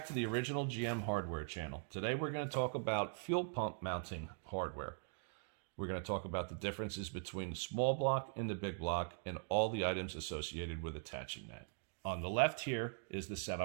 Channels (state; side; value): silent; left; digital silence